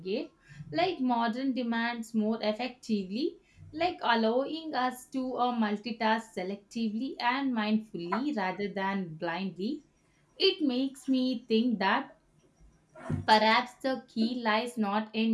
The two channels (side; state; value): both; identical; correlation 1.00